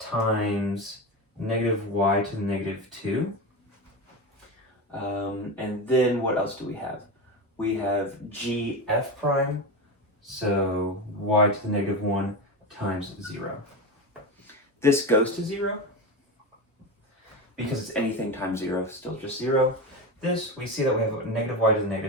negative y to the negative 2. And then what else do we have? We have gf prime, so y to the negative 1 times 0. This goes to 0 because it's anything times 0, still just 0. This, we see that we have negative y to the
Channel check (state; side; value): normal; both; correlation 0.19